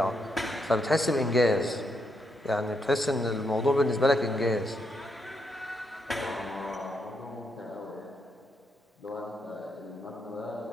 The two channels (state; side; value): normal; both; correlation 0.79